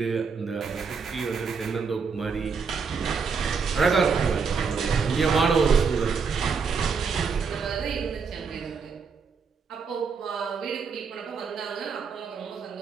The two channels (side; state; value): left; quieter; 5.5 dB